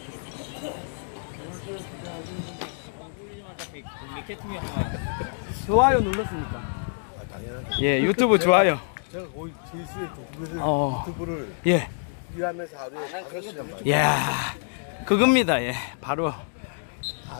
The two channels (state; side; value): silent; right; digital silence